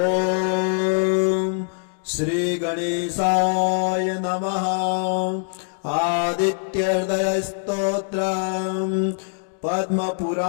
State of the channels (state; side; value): silent; right; digital silence